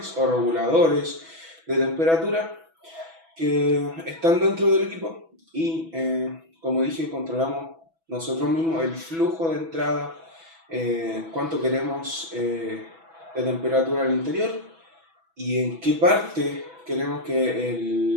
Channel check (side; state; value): left; late; 6.1 ms